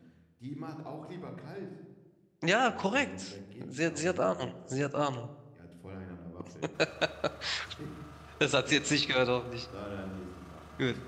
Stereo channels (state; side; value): identical; both; correlation 1.00